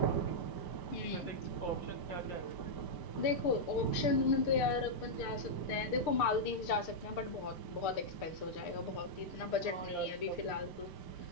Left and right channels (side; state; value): right; late; 6.6 ms